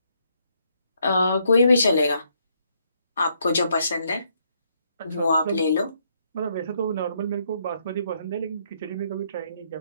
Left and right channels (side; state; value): both; inverted; correlation -0.73